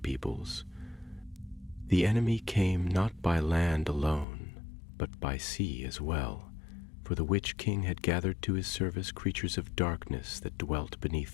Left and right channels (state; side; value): drops out; right; at 4.2 s